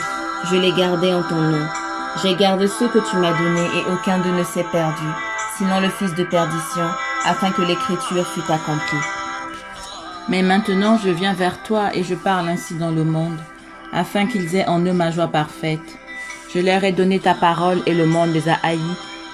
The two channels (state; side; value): identical; both; correlation 1.00